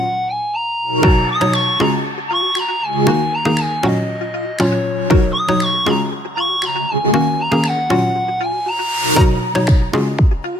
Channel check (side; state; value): both; normal; correlation 0.72